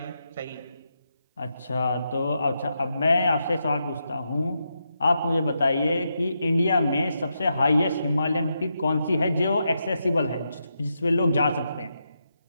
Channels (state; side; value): inverted; both; correlation -0.84